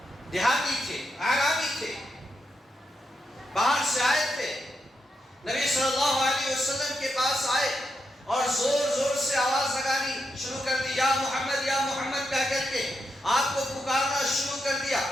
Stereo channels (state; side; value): normal; both; correlation 0.84